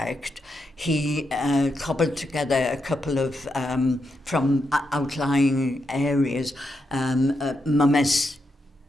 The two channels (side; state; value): both; normal; correlation 0.83